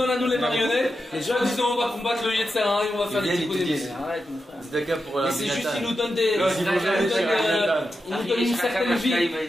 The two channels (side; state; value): both; normal; correlation 0.89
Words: à nous les marionnettes. Soi-disant, on va combattre le Yetzera et on va faire des petits coups de arrête, mon frère. Mais c'est juste qu'il nous donne il nous donne une certaine vie